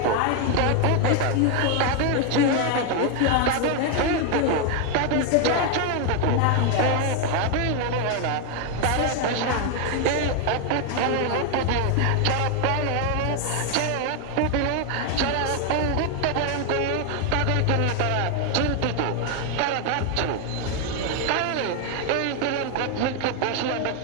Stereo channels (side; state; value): both; different; correlation 0.01